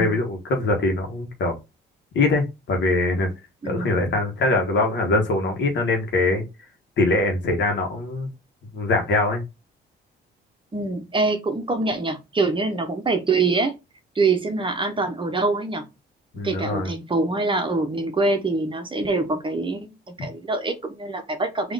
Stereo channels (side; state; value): both; normal; correlation 0.39